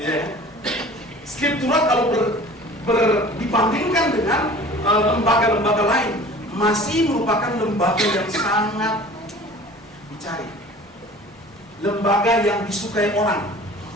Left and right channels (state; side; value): normal; both; correlation 0.44